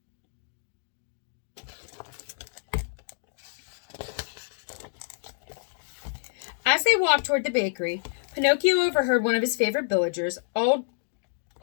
As they walked toward the bakery, Pinocchio overheard one of his favorite villagers, old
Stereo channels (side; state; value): right; silent; digital silence